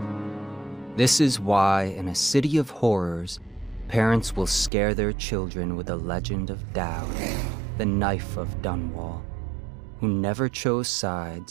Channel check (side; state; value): left; drops out; at 4.7 s